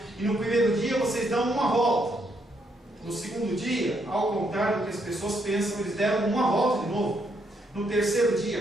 E no primeiro dia vocês dão uma volta. No segundo dia, ao contrário do que as pessoas pensam, eles deram uma volta de novo. No terceiro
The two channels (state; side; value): normal; both; correlation 0.75